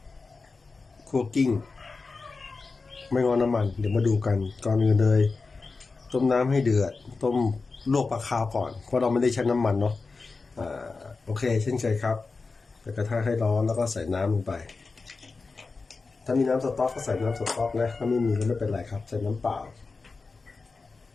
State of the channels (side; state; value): right; quieter; 4.1 dB